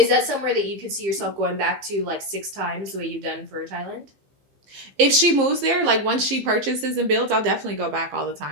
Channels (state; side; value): late; left; 15 ms